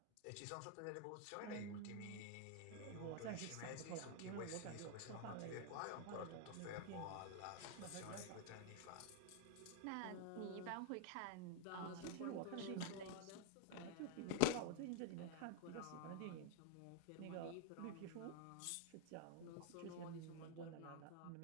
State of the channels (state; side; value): different; both; correlation 0.00